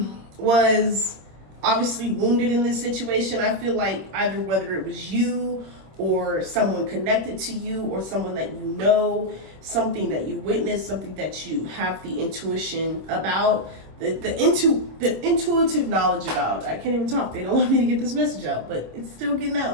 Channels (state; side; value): late; left; 26 ms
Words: was obviously wounded in this situation, I feel like either whether it was you or someone connected to you or someone that you know, something that you witnessed, something that you have the intuition about, the intuitive knowledge about. I can't even talk. They don't want me to get this message out, but it's still getting